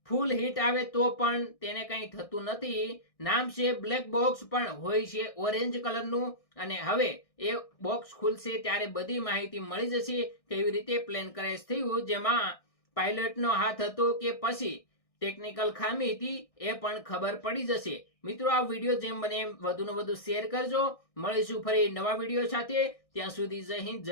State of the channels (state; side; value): late; right; 1.6 ms